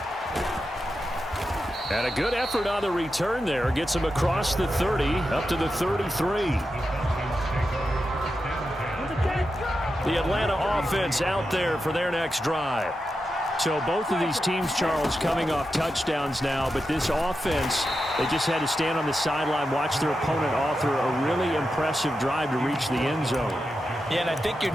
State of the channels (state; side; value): normal; both; correlation 0.89